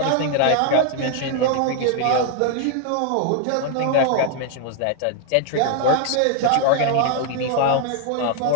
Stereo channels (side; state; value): both; different; correlation 0.00